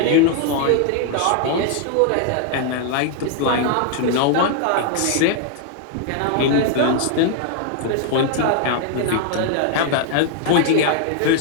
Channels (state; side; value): different; both; correlation 0.00